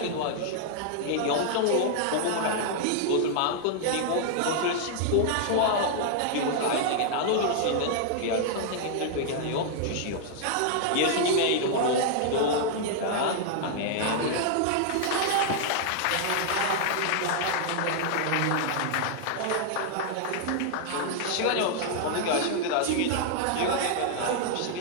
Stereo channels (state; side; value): different; both; correlation -0.01